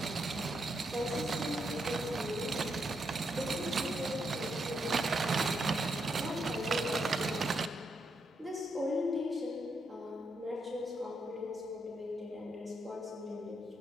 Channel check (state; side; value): normal; both; correlation 0.80